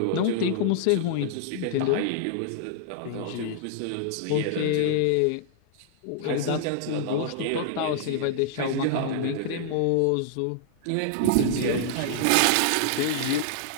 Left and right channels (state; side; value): different; both; correlation -0.01